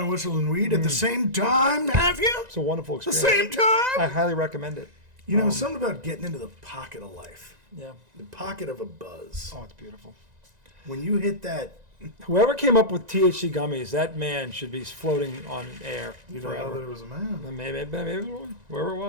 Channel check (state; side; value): late; left; 1.9 ms